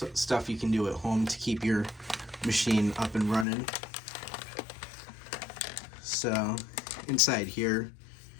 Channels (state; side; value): drops out; right; at 3.5 s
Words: stuff you can do at home to keep your machine up and running. So inside here